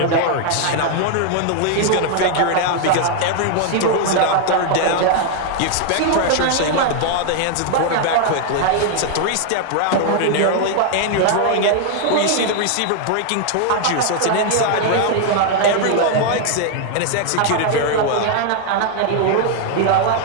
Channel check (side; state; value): both; different; correlation 0.00